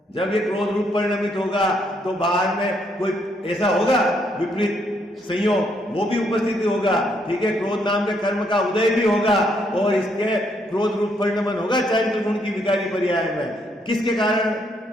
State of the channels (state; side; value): normal; both; correlation 0.73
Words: जब ये क्रोध रूप परिणमित होगा तो बाहर में कोई ऐसा होगा विपरीत, संयोग वो भी उपस्थिति होगा, ठीक है। क्रोध नाम के कर्म का उदय भी होगा और इसके क्रोध रूप परिणमन होगा चारित्र गुण की विकारी पर्याय में। किसके कारण?